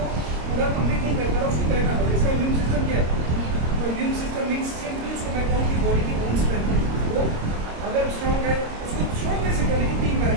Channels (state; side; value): late; left; 26 ms